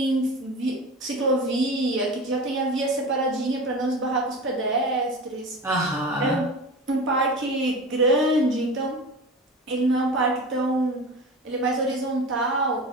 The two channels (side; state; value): both; normal; correlation 0.31